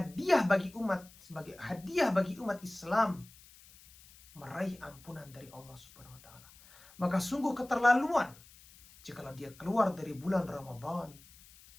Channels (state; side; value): noise; left; hiss, 23 dB below the sound